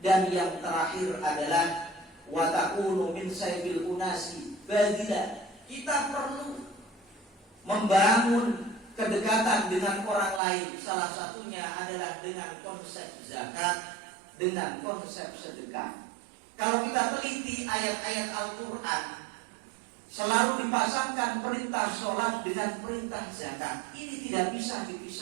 yang terakhir adalah watakunu min saibil unasi badila. Kita perlu membangun kedekatan dengan orang lain. Salah satunya adalah dengan konsep zakat, dengan konsep sedekah. Kalau kita teliti ayat-ayat Al-Quran, selalu dipasangkan perintah sholat dengan perintah zakat. Ini tidak bisa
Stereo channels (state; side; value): drops out; left; at 10.4 s